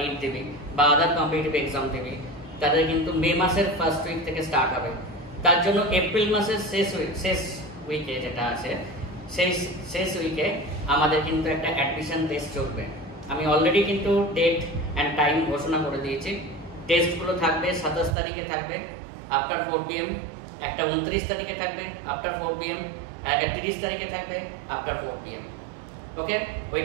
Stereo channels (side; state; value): left; drops out; at 18.2 s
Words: দেবে বা আদার কম্পিটিটিভ এক্সাম দেবে, তাদের কিন্তু মে মাসের ফার্স্ট উইক থেকে স্টার্ট হবে। তার জন্য এপ্রিল মাসের শেষ উইকে যেটা আছে, সেই শেষ উইকে আমাদের কিন্তু একটা অ্যাডমিশন টেস্ট চলবে। আমি অলরেডি কিন্তু ডেট অ্যান্ড টাইম ঘোষণা করে দিয়েছি। টেস্টগুলো থাকবে 27 তারিখে থাকবে আফটার 4 PM, একটা 29 তারিখে থাকবে আফটার 4 PM, একটা 30 তারিখে থাকবে আফটার 4 PM। ওকে, ওই